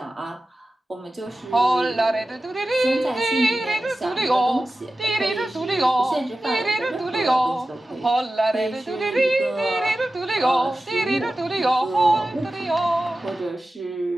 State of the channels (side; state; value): both; normal; correlation 0.94